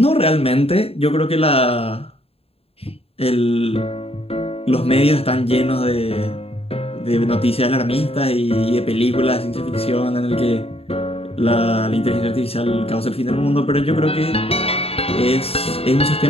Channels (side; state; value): right; late; 0.28 ms